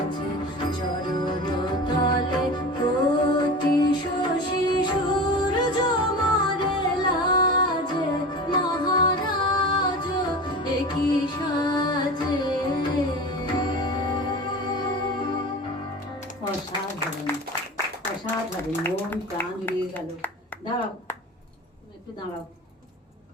চরণ তলে কোটি শশী সূর্য মরে লাজে মহারাজ একই সাজে অসাধারণ অসাধারণ মন প্রাণ জুড়িয়ে গেল। দাঁড়াও একটু দাঁড়াও।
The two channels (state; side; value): normal; both; correlation 0.32